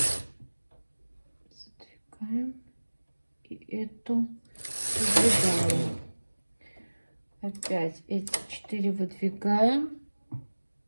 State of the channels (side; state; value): both; inverted; correlation -1.00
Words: Задвигаем. И эту выдвигаем. Опять эти 4 выдвигаем.